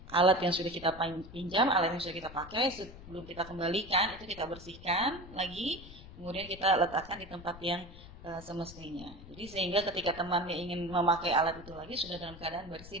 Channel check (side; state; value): left; noise; rumble, 16 dB below the sound